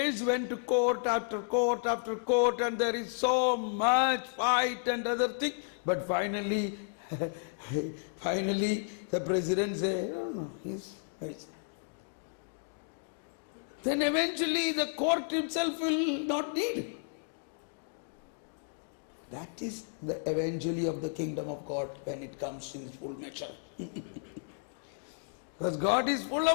went to court after court after court, and there is so much fight and other thing. But finally, the president say, no, he's mercy. Then eventually the court itself will not need. That is the eventually of the kingdom of God when it comes in full measure. Because God is full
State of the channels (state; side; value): silent; right; digital silence